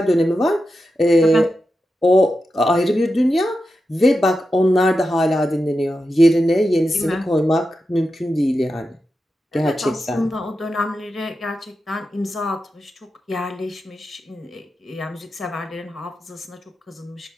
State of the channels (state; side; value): normal; both; correlation 0.89